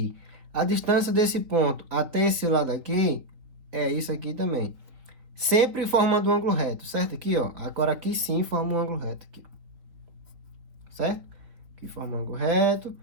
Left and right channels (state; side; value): late; left; 3.6 ms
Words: A distância desse ponto até esse lado aqui é isso aqui também. Sempre formando um ângulo reto, certo? Aqui, ó. Agora aqui sim forma um ângulo reto aqui. Certo? Aqui forma um ângulo reto